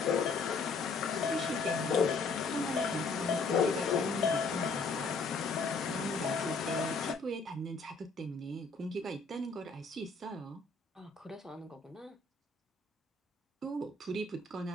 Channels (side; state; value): right; quieter; 4.2 dB